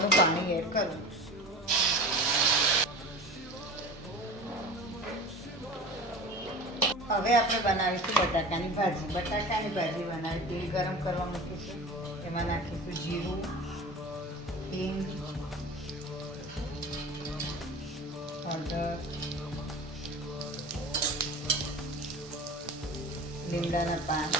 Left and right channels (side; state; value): both; normal; correlation 0.35